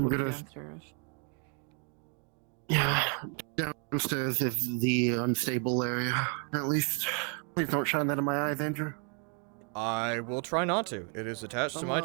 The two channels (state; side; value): quieter; left; 39.7 dB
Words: it'll be gonna- downstairs. Yeah, downstairs is the unstable area. At least, please don't shine that in my eyes, Andrew. I will try not to. It is attached to my